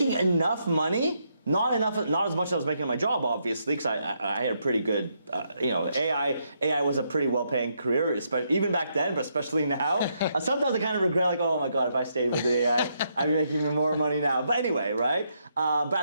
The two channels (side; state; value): both; inverted; correlation -0.77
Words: enough money, not as much as I was making in my job, obviously, because I had a pretty good, AI was a pretty well-paying career, even back then, but especially now. Sometimes I kind of regret, oh my God, if I stayed with the AI, I'd be making even more money now. But anyway, right?